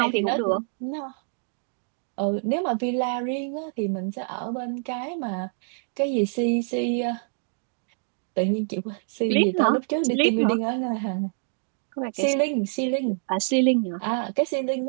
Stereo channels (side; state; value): left; silent; digital silence